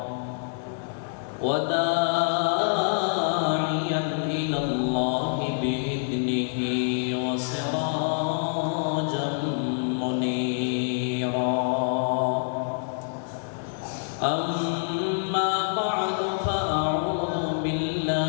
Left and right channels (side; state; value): right; silent; digital silence